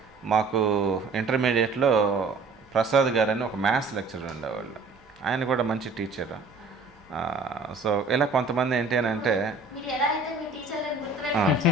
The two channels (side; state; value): left; quieter; 3.7 dB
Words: మాకు ఇంటర్మీడియట్లో ప్రసాద్ గారు అని ఒక మ్యాథ్స్ లెక్చరర్ ఉండేవాళ్ళు. ఆయన కూడా మంచి టీచర్. సో ఇలా కొంతమంది ఏంటి అని అంటే